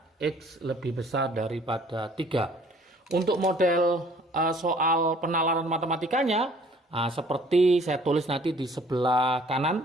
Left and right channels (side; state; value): both; normal; correlation 0.56